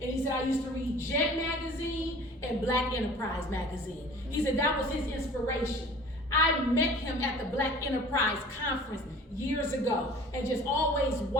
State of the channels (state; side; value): normal; both; correlation 0.46